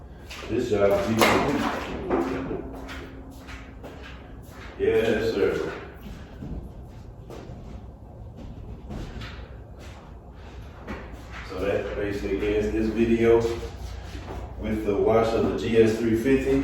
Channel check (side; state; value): both; identical; correlation 1.00